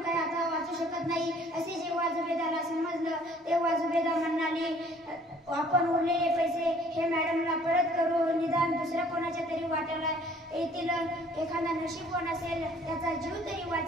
काही आता वाचू शकत नाही असे जेव्हा जुबेदाला समजलं, तेव्हा जुबेदा म्हणाली, आपण उरलेले पैसे हे मॅडमला परत करू, निदान दुसऱ्या कोणाच्या तरी वाट्याला येतील, एखादा नशीबवान असेल त्याचा जीव तरी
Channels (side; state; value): both; normal; correlation 0.56